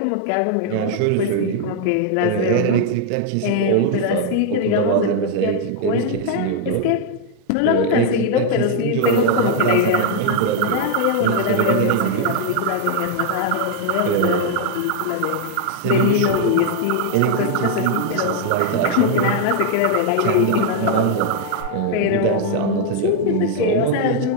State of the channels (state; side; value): different; both; correlation 0.00